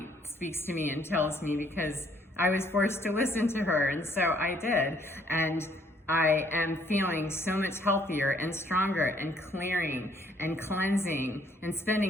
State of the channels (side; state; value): both; normal; correlation 0.65